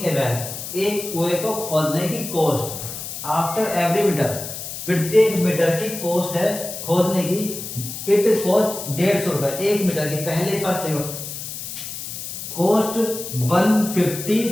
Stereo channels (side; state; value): left; noise; hiss, 8 dB below the sound